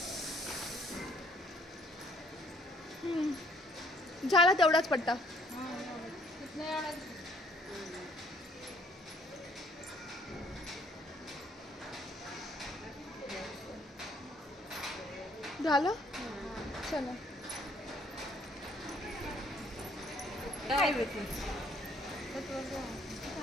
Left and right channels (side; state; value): both; normal; correlation 0.64